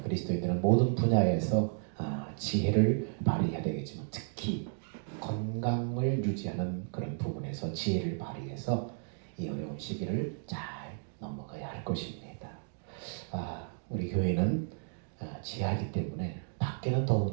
그리스도인들은 모든 분야에서 지혜를 발휘해야 되겠지만 특히 건강을 유지하는 그런 부분에서 지혜를 발휘해서 이 어려운 시기를 잘 넘어가야 할 것입니다. 우리 교회는 지하이기 때문에 밖에는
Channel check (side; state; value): left; silent; digital silence